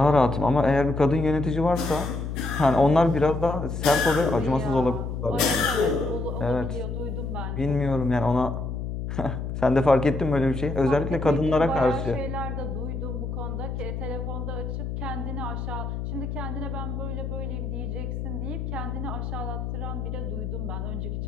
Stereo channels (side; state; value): left; noise; hum, 4 dB below the sound